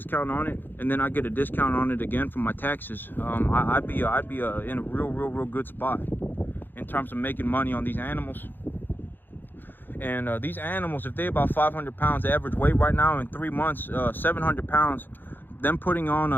on it, and then I get a discount on it again from my taxes, I'd be in a real good spot in terms of making money on these animals. And these animals, if they're about 500 pounds average weight right now, in 3 months, 700 pounds, them putting on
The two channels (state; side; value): late; right; 0.094 ms